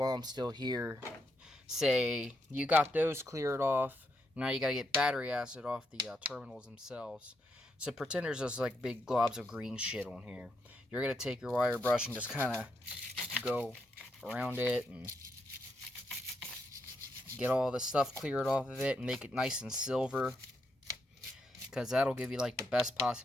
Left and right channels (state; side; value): normal; both; correlation 0.80